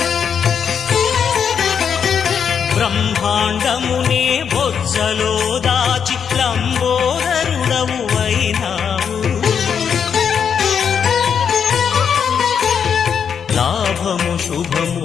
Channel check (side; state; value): right; quieter; 7.3 dB